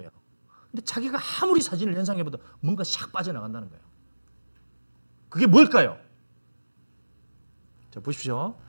근데 자기가 아무리 사진을 연상해봐도 뭔가 샥 빠져나간다는 거예요. 그게 뭘까요? 자, 보십시오.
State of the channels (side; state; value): both; inverted; correlation -1.00